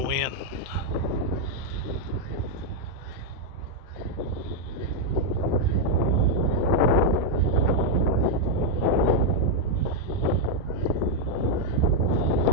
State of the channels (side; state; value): left; late; 16 ms